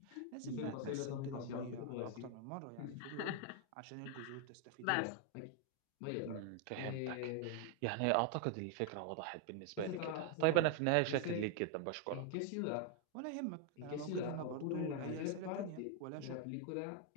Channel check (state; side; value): different; both; correlation 0.00